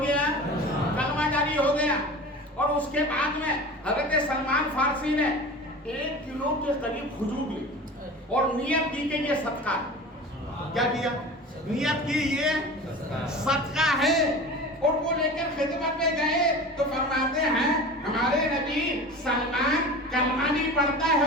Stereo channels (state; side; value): normal; both; correlation 0.35